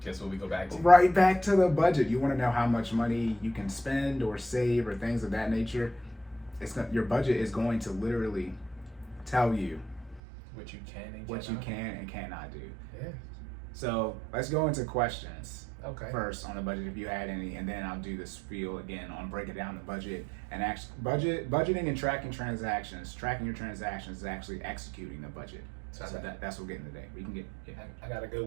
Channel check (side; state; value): left; drops out; at 10.2 s